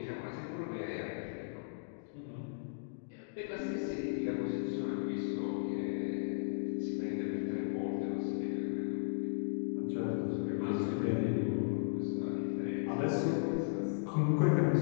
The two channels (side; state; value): right; silent; digital silence